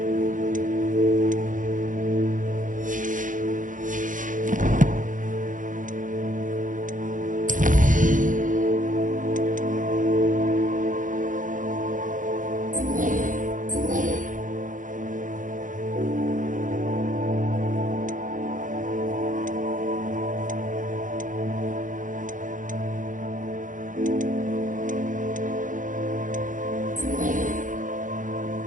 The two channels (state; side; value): late; left; 0.38 ms